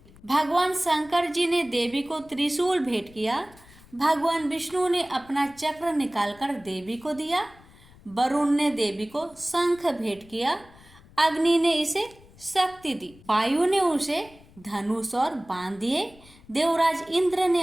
भगवान शंकर जी ने देवी को त्रिशूल भेंट किया। भगवान विष्णु ने अपना चक्र निकालकर देवी को दिया। वरुण ने देवी को शंख भेंट किया, अग्नि ने इसे शक्ति दी, वायु ने उसे धनुष और बाण दिए, देवराज इंद्र ने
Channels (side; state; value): left; noise; rumble, 25 dB below the sound